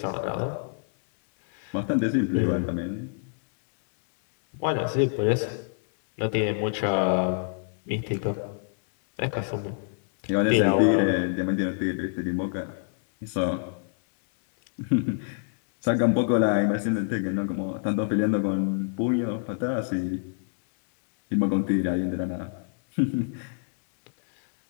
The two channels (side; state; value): right; silent; 61 dB below the other